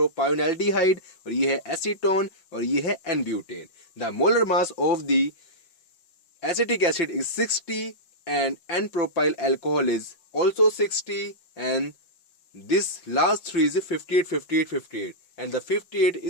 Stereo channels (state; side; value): late; right; 5.5 ms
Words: और ये है एसीटोन, और ये है N-butane. The molar mass of the acetic acid is 60 and N-propyl alcohol is also 60, and this last three is 58 58 58, and the 58